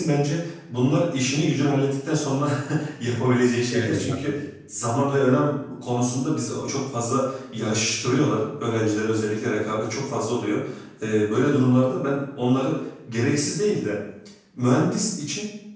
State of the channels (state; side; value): identical; both; correlation 1.00